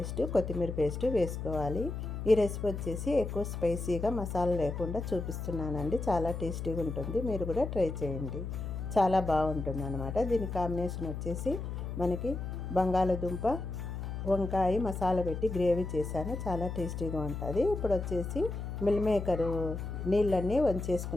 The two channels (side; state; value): left; noise; hum, 5 dB below the sound